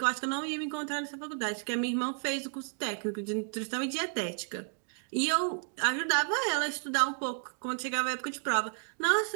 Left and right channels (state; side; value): silent; left; 56 dB below the other